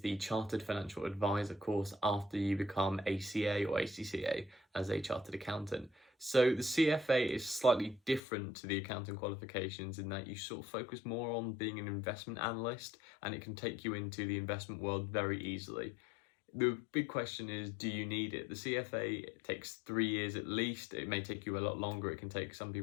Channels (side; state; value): right; drops out; at 8.2 s